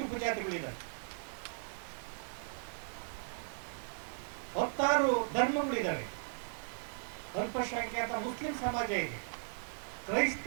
ಉಪಜಾತಿಗಳಿದ್ದಾವೆ, 16 ಧರ್ಮಗಳಿದ್ದಾವೆ. ಅಲ್ಪಸಂಖ್ಯಾತ ಮುಸ್ಲಿಂ ಸಮಾಜ ಇದೆ,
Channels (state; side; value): silent; left; digital silence